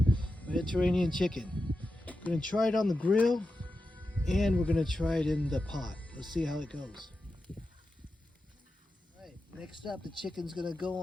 Mediterranean chicken. Gonna try it on the grill, and we're gonna try it in the pot. Let's see how it goes. Alright, next up, the chicken's gonna go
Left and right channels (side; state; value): both; normal; correlation 0.91